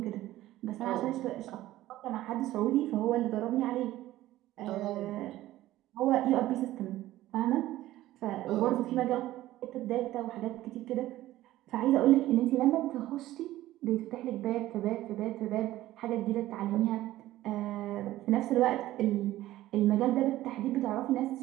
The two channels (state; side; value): quieter; left; 15.3 dB